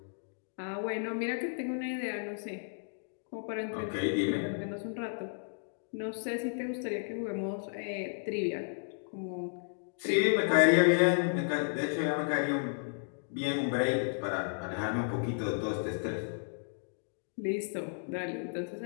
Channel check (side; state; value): right; silent; digital silence